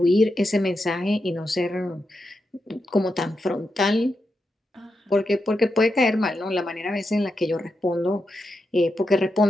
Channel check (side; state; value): both; normal; correlation 0.86